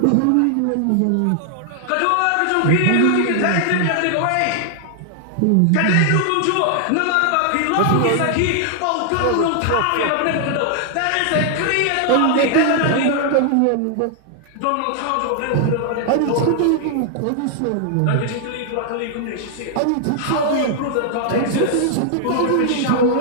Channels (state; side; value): different; both; correlation 0.00